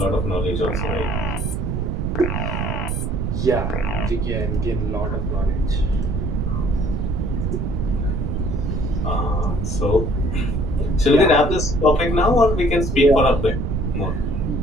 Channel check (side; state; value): right; noise; rumble, 1 dB below the sound